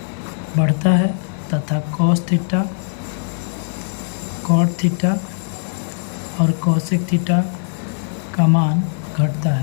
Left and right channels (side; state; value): right; silent; digital silence